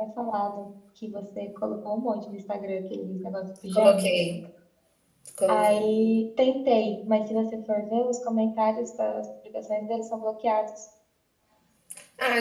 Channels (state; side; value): identical; both; correlation 1.00